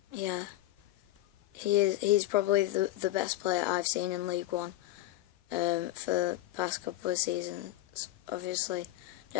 Yeah, he's probably the best player I've seen in League One for the past couple of seasons. Obviously,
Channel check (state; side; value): quieter; right; 15.8 dB